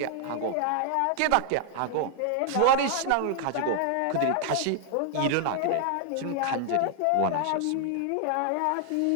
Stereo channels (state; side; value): different; both; correlation 0.00